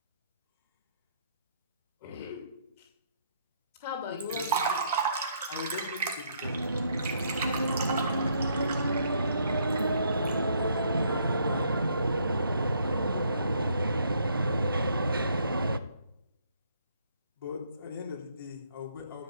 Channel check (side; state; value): both; inverted; correlation -0.69